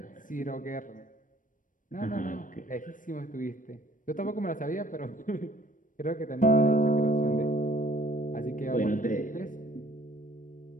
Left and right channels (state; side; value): late; right; 0.38 ms